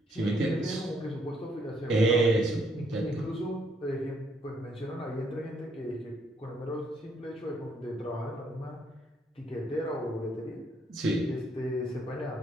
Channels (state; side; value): normal; both; correlation 0.70